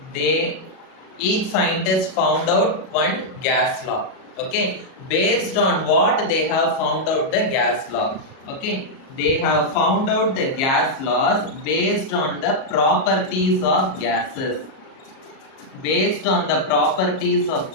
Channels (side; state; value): right; late; 37 ms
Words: they Each scientist found out one gas law. Okay, based on what they have found out the gas law. Okay, they have found out the gas laws based on the properties of gases. Based on the properties of